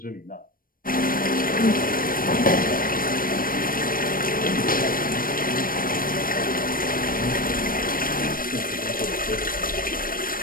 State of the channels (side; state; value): right; late; 0.41 ms